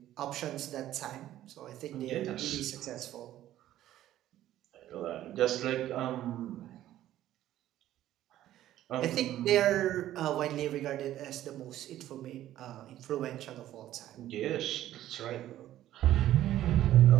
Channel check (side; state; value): left; quieter; 13.2 dB